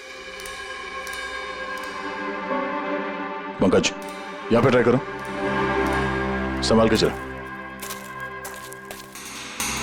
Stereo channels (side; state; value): both; identical; correlation 1.00